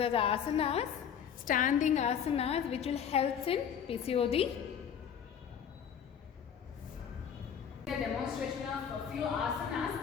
the asanas, standing asanas, which will help in PCOD. A demonstration of a few asanas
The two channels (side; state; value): right; quieter; 8.1 dB